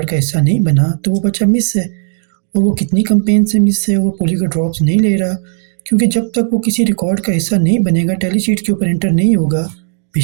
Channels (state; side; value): silent; left; digital silence